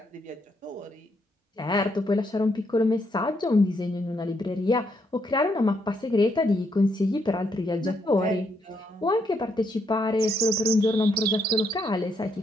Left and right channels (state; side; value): normal; both; correlation 0.76